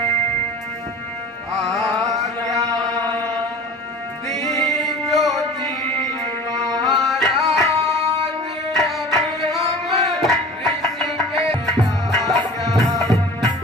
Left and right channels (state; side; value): normal; both; correlation 0.40